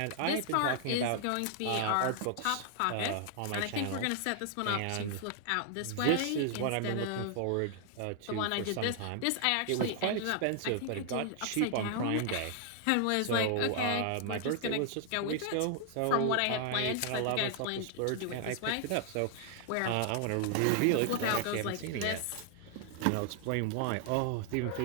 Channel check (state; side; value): different; both; correlation 0.00